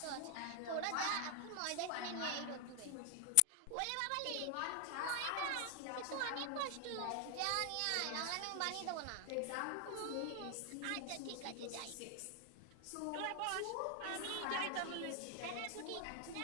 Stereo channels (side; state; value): both; different; correlation 0.00